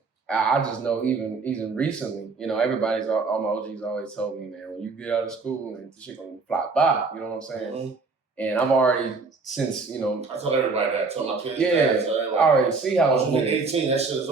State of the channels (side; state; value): left; quieter; 4.2 dB